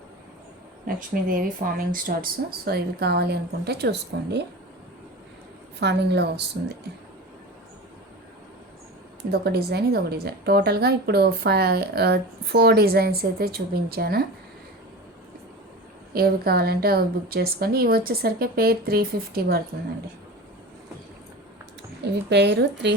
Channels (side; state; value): both; normal; correlation 0.32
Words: Lakshmidevi farming studs. So ఇవి కావాలి అనుకుంటే చూసుకోండి, ఫార్మింగ్లో వస్తుంది. ఇదొక డిజైన్. టోటల్గా ఇప్పుడు 4 డిజైన్స్ అయితే చూపించాను. ఏవి కావాలంటే అవి బుక్ చేసుకోండి. ఇవి వచ్చేసరికి పేర్ 350 పడుతుందండి. ఇవి పేరు